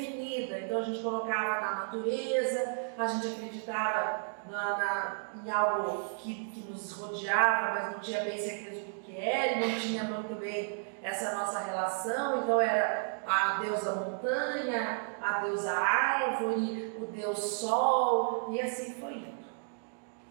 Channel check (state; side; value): silent; left; digital silence